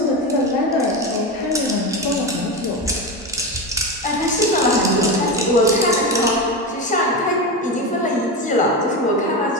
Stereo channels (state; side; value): normal; both; correlation 0.18